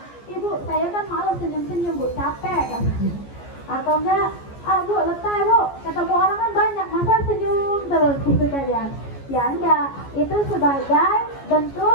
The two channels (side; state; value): right; late; 14 ms